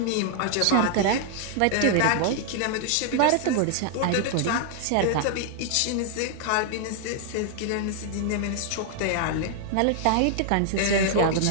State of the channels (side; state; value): both; different; correlation 0.00